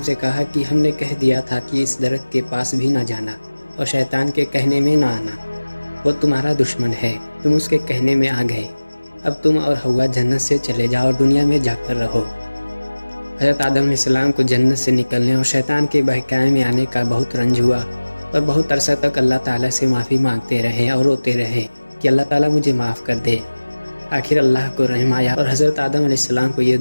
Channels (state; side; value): inverted; both; correlation -1.00